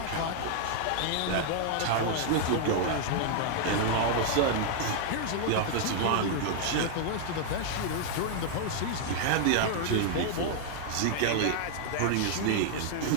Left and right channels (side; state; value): both; different; correlation 0.00